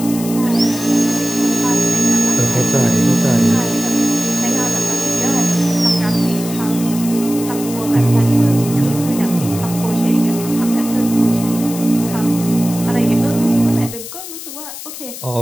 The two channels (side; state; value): left; noise; hiss, 11 dB below the sound